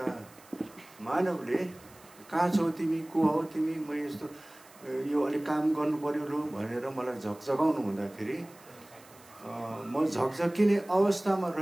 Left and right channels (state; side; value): noise; right; hiss, 24 dB below the sound